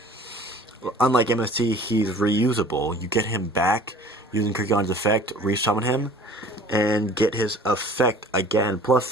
MST, he's reusable. You get him back using Kirkion's effect, resummon him, and get his effect again. Plus,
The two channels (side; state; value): both; normal; correlation 0.47